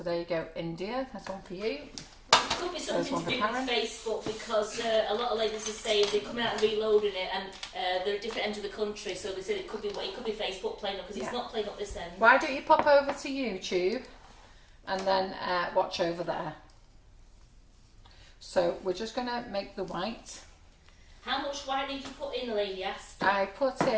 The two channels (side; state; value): both; identical; correlation 1.00